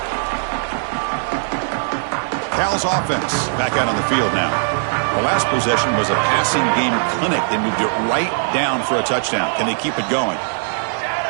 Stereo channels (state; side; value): silent; left; digital silence